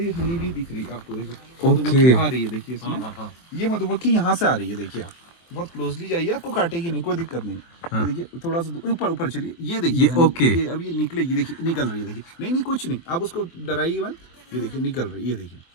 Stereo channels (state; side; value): late; right; 23 ms